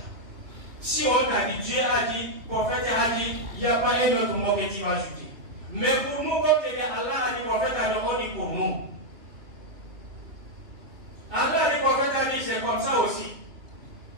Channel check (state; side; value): late; left; 2.9 ms